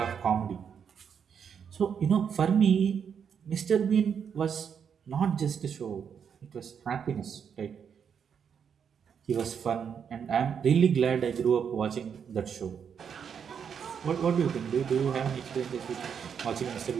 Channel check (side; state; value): left; quieter; 7.3 dB